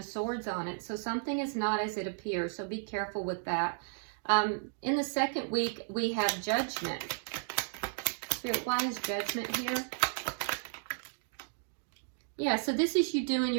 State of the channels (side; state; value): left; silent; digital silence